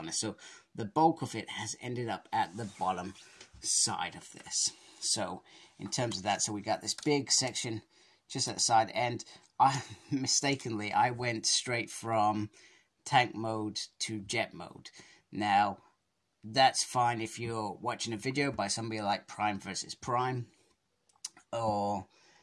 So the bulk of it has ended up at the bottom side of this. So in terms of that, so we got this big section just at the side, and I mistakenly went straight from tank mode to jet mode. Now that's fine if you're watching a video by somebody like Prime versus Prime, or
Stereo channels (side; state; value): both; identical; correlation 1.00